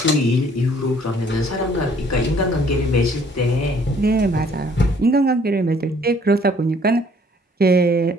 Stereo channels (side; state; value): both; normal; correlation 0.60